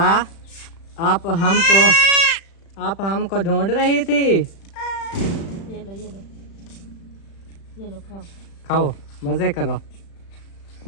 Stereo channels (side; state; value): right; late; 36 ms